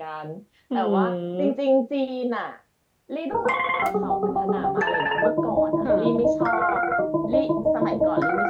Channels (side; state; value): both; identical; correlation 1.00